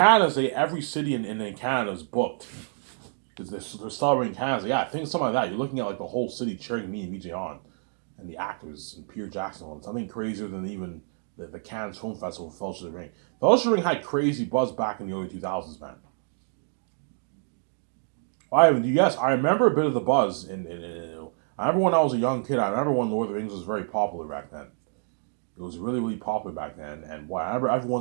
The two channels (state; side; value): silent; left; 58 dB below the other